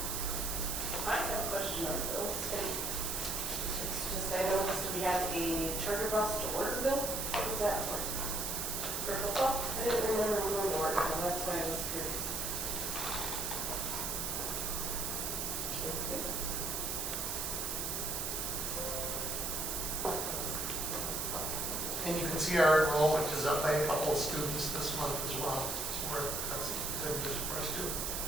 I have a question on bills, and it's just, I noticed we had a charter bus to order bill. What was that for? For football? I didn't remember going to order bill, that's why I was curious. And you can see our enrollment is up by a couple of students this month as well. So that's good news for us too.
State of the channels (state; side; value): noise; right; hiss, 1 dB below the sound